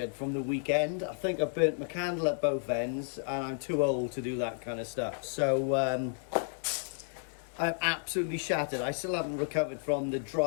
from the weekend. I think I burnt my candle at both ends, and I'm too old to do that kind of stuff. So I'm absolutely shattered. I still haven't recovered from the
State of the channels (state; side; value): silent; right; digital silence